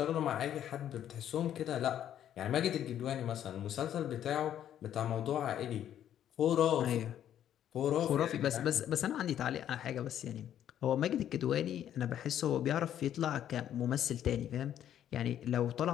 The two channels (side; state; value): right; quieter; 10.6 dB